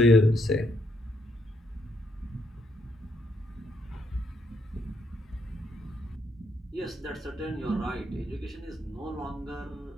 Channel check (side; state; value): both; normal; correlation 0.75